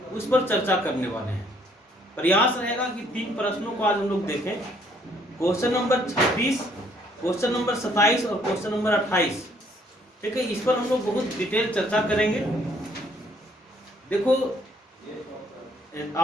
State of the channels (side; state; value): both; normal; correlation 0.65